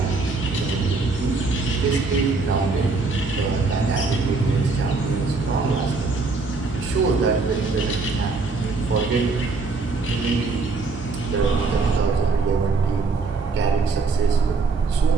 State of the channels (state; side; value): quieter; left; 4.0 dB